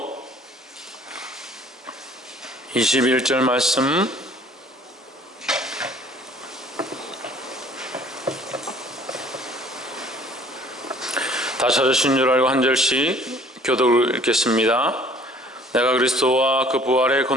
21절 말씀, 다 찾으신 줄 알고 한 절씩 교독을 읽겠습니다. 내가 그리스도와 그 부활의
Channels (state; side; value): normal; both; correlation 0.54